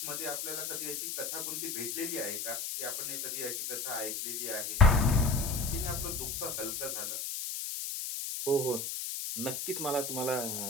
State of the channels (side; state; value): left; noise; hiss, 4 dB below the sound